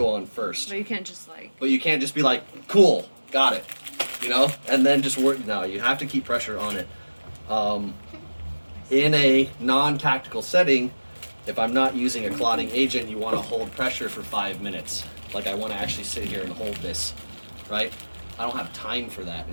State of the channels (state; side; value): inverted; both; correlation -1.00